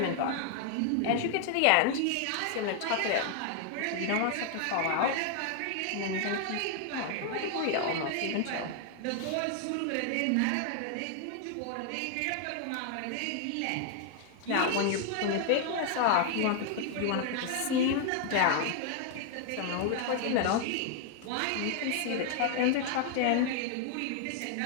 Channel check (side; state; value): both; different; correlation 0.00